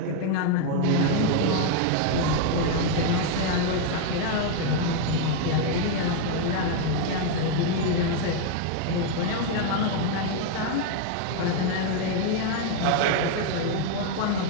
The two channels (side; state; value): both; different; correlation 0.01